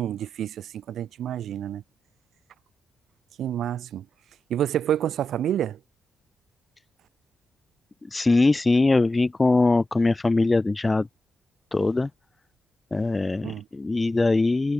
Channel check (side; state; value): both; normal; correlation 0.91